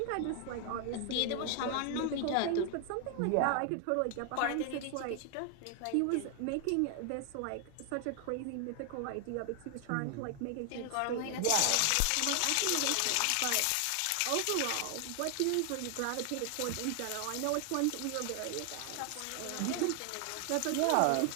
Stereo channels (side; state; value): both; different; correlation 0.00